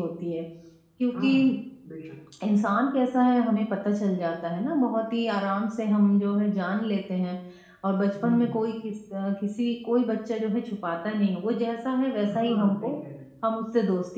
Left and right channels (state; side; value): identical; both; correlation 1.00